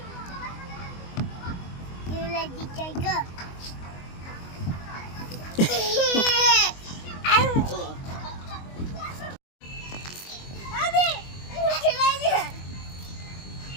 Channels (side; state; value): right; late; 22 ms